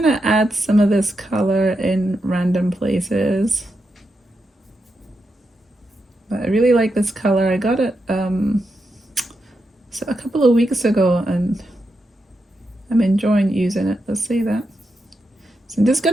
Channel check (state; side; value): normal; both; correlation 0.85